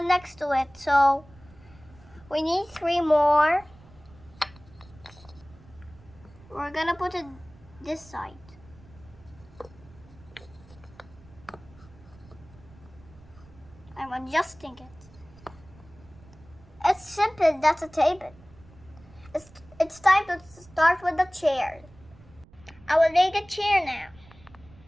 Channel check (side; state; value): right; noise; rumble, 24 dB below the sound